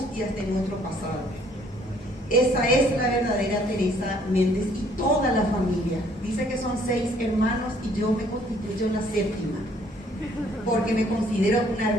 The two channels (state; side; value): normal; both; correlation 0.62